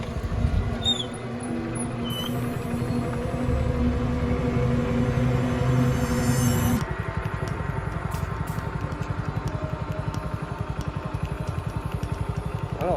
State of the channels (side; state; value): both; identical; correlation 1.00